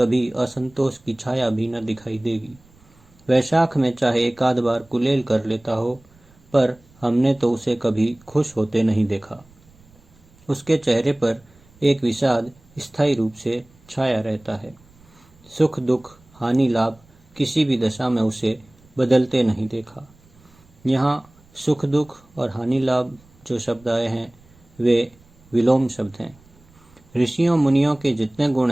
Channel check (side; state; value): right; noise; rumble, 28 dB below the sound